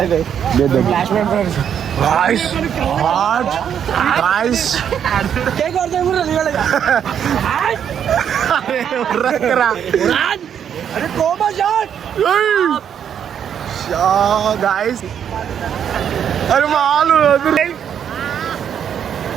flash man friends. Guys, hot, guys. Take out the mura, liga lega. Rakra. Are coma shot. Shot, guys. Are malu, adure.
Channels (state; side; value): quieter; left; 8.6 dB